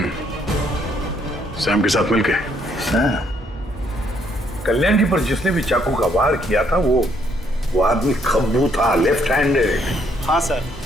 सैम के साथ मिलके। कल्याण की पर जिसने भी चाकू का वार किया था वो आदमी खब्बू था, लेफ्ट हैंडेड। हाँ सर,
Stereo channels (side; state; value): both; normal; correlation 0.69